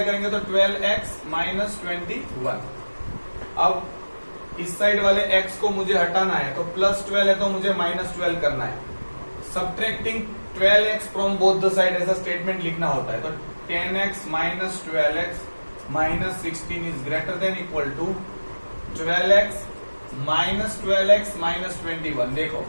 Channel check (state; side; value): inverted; both; correlation -1.00